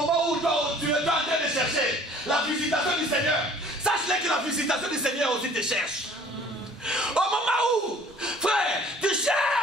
où toi, tu es en train de chercher la visitation du Seigneur, sache que la visitation du Seigneur aussi te cherche. Au moment où, frère, tu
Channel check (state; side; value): normal; both; correlation 0.52